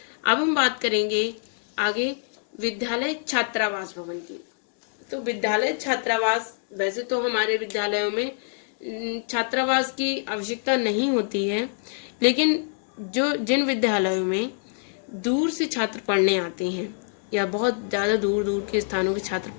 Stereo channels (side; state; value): right; silent; 61 dB below the other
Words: अब हम बात करेंगे आगे विद्यालय छात्रावास भवन की। तो विद्यालय छात्रावास, वैसे तो हमारे विद्यालयों में छात्रावास की आवश्यकता नहीं होती है, लेकिन जिन विद्यालयों में दूर से छात्र पढ़ने आते हैं या बहुत ज़्यादा दूर दूर के स्थानों के छात्र